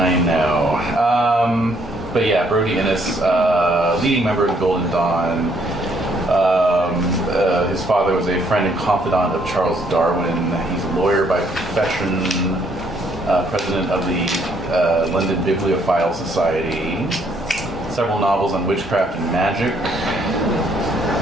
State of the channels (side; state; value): both; normal; correlation 0.68